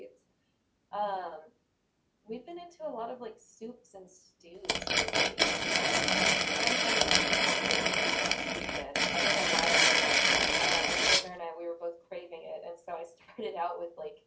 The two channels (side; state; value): both; identical; correlation 1.00